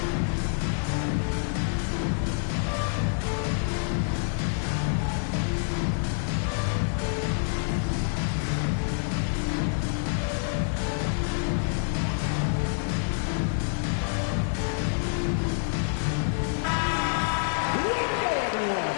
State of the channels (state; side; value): silent; right; digital silence